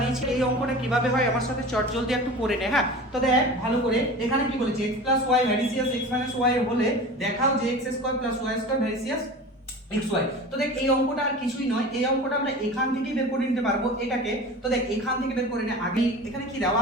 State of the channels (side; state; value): both; normal; correlation 0.35